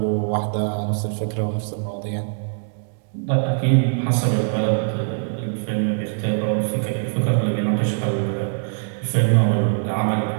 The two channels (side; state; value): left; silent; digital silence